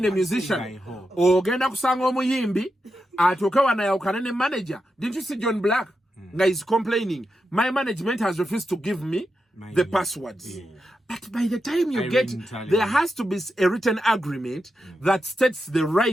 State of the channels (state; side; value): normal; both; correlation 0.87